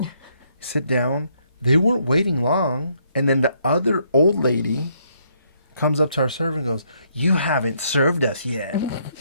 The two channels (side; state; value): both; inverted; correlation -0.71